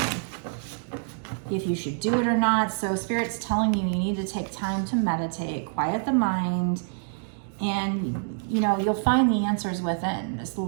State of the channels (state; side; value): silent; left; digital silence